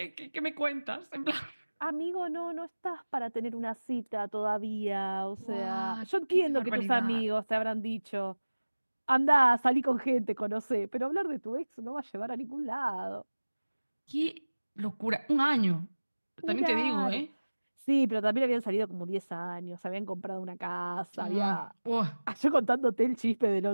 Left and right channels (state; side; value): inverted; both; correlation -1.00